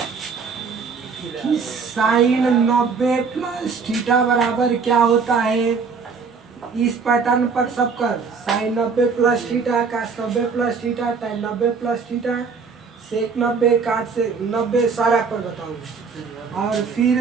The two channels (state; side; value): quieter; left; 5.2 dB